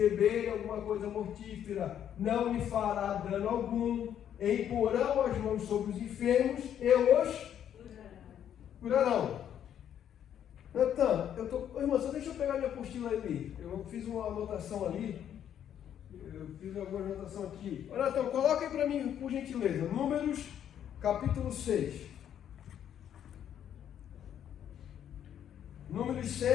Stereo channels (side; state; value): right; quieter; 9.8 dB